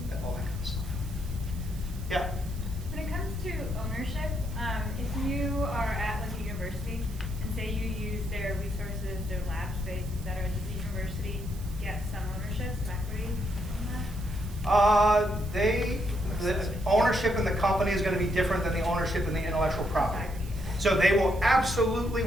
all that kind of stuff. Yeah. When it comes to ownership, if you are at like a university and say you use their resources, their lab space, et cetera, does the university get some ownership, some equity on that? The ownership in the company is going to be different than the ownership in the intellectual property. So they will absolutely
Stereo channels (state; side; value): noise; right; hiss, 20 dB below the sound